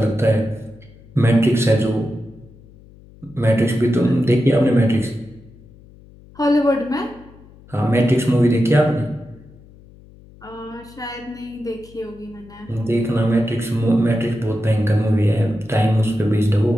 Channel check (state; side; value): noise; left; hum, 23 dB below the sound